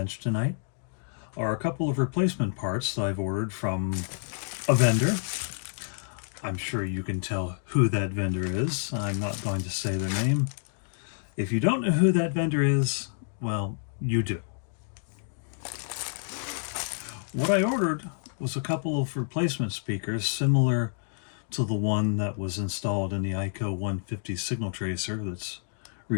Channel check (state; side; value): silent; right; digital silence